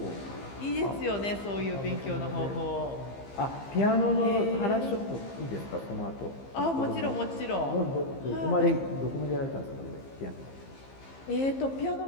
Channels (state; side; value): late; right; 15 ms